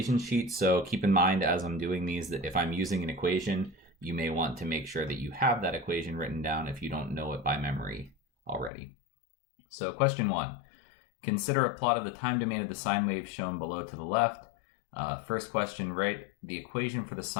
sheet, so keep in mind as I'm doing these that if I'm using an equation, you may want to make sure that you have that equation written down if you don't know it by memory already. So question 1, consider a plot of the time domain of the sine wave shown below to the left. First question, write the equation for the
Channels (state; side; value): drops out; right; at 8.7 s